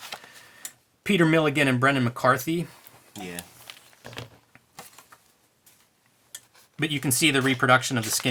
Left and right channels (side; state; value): both; identical; correlation 1.00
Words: Peter Milligan and Brendan McCarthy. Yeah. But you can see the reproduction of the